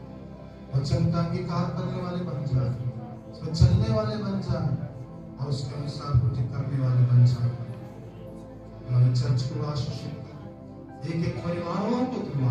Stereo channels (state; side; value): identical; both; correlation 1.00